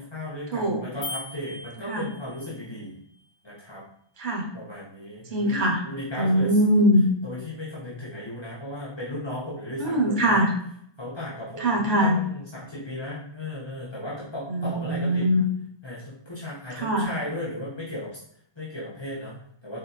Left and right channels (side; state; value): right; late; 1.2 ms